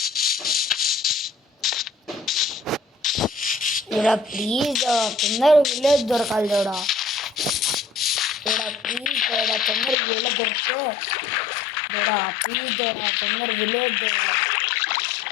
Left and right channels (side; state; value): right; drops out; at 10.0 s